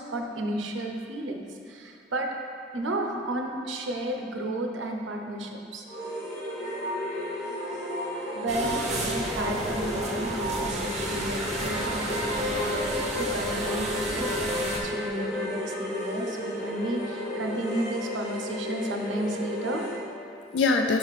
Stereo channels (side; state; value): both; normal; correlation 0.39